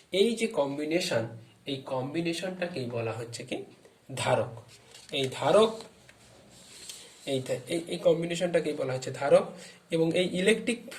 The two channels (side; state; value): both; identical; correlation 1.00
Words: এই যে কম্বিনেশন, এই কম্বিনেশনটাকেই বলা হচ্ছে কি ধারক। এই ধারক, এই কম্বিনেশনটাকেই বলা হচ্ছে ধারক। এবং এই ইলেকট্রিক